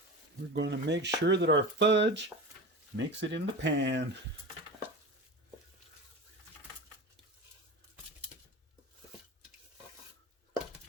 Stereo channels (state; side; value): normal; both; correlation 0.30